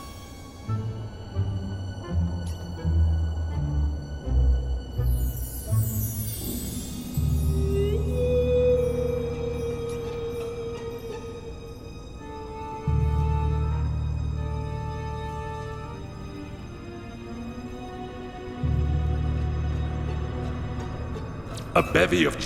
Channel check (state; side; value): identical; both; correlation 1.00